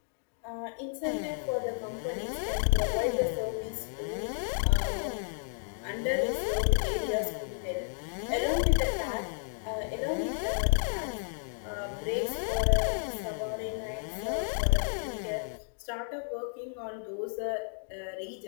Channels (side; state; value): right; silent; 56 dB below the other